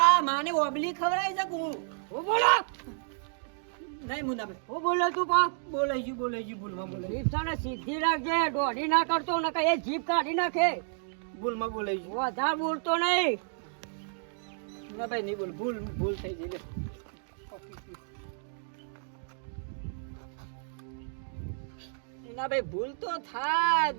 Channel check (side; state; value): left; silent; digital silence